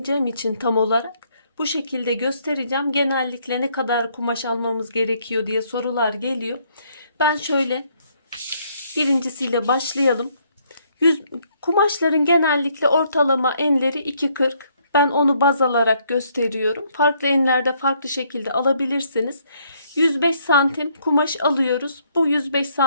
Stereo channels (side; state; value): both; inverted; correlation -0.69